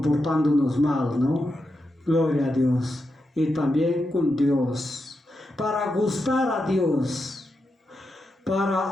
mal, ¿no? Gloria a Dios. Y también con Dios. Para gustar a Dios,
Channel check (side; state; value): both; normal; correlation 0.86